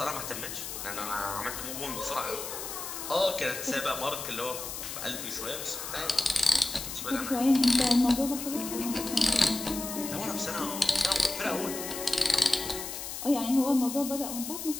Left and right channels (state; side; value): noise; left; hiss, 7 dB below the sound